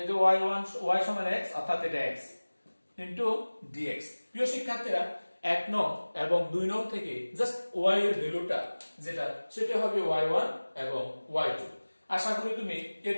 যে y1 y সমান x, অর্থাৎ এটা x ইনটু dx। প্রিয় শিক্ষার্থীরা, 1 নং এবং 2 নং থেকে জাস্ট y এর ভ্যালুটা যেটা সেটা হবে y1 এবং y2। আশা করি তুমি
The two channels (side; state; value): both; inverted; correlation -1.00